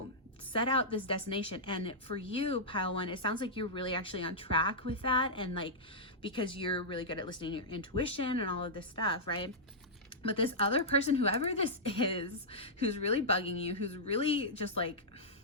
set out this destination. And for you, pile 1, it sounds like you're really actually on track with that. And like, because you're really good at listening to your intuition and all of this stuff, right? But this other person, whoever this is, who's really bugging you, who's really just like,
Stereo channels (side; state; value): both; normal; correlation -0.11